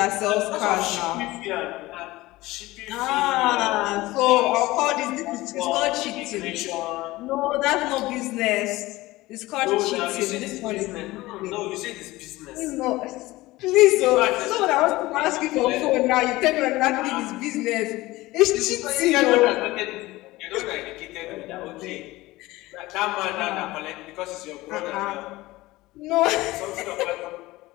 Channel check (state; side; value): quieter; right; 19.0 dB